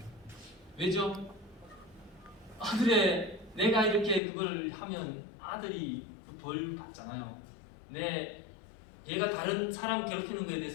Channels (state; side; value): drops out; right; at 4.2 s